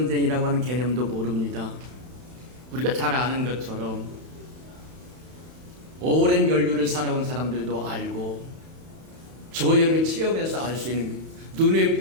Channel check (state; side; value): late; left; 31 ms